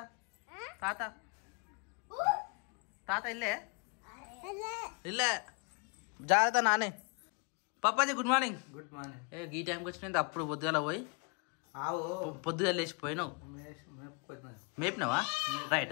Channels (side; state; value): right; quieter; 34.3 dB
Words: తాత ఇల్లే జాగ్రత్త నానే. Papaji good morning. Good morning. ఈ టైంకి వచ్చినది అప్పుడు పొద్దుగాల పోయి పొద్దుగాల లేచిపోయినావు. మేపినావా?